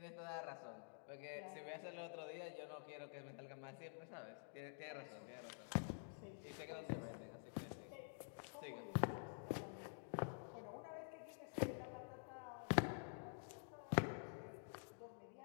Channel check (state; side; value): silent; right; digital silence